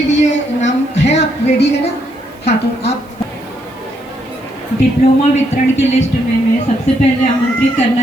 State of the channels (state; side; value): noise; right; hiss, 30 dB below the sound